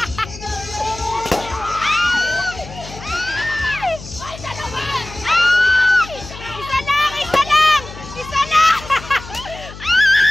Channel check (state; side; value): noise; left; hum, 15 dB below the sound